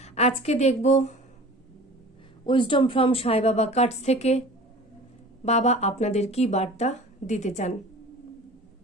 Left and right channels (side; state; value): both; normal; correlation 0.42